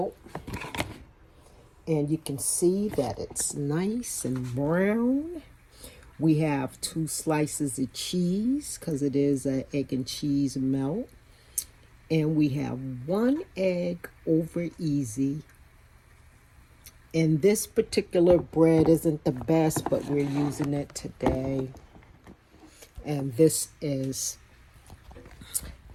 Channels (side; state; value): both; identical; correlation 1.00